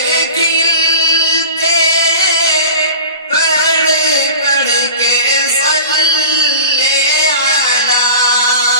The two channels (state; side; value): inverted; both; correlation -0.36